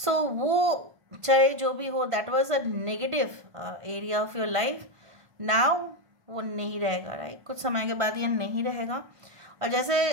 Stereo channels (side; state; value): left; late; 1.5 ms